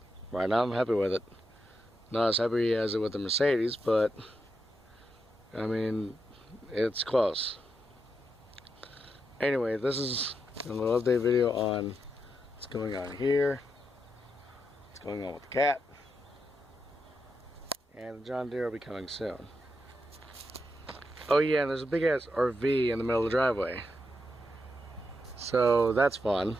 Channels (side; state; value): both; normal; correlation 0.84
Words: right now I'm happy with it. Not as happy as it with the Mercedes, but I mean, it's close. Anyway, this is a little update video on what's going on here, what's going on with the cat, and the John Deere will be coming soon. Oh yeah, and there's a big ass RV in the middle of the driveway. So that's fun.